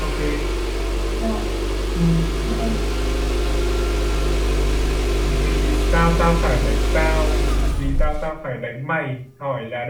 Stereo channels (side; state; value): both; identical; correlation 1.00